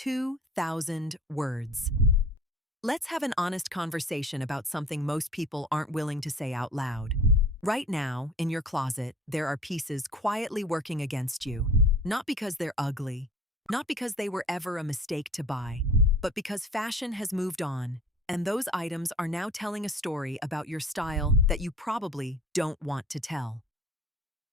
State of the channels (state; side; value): normal; both; correlation 0.45